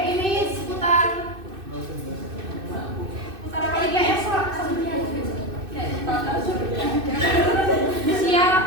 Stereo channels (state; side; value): late; left; 2.6 ms